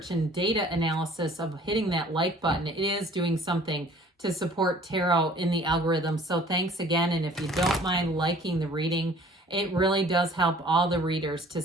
and data analysis of hitting that like button. It is doing something to support tarot in the algorithm. So thanks again. And if you don't mind liking the reading, it really does help all the readers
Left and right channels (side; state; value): both; normal; correlation 0.52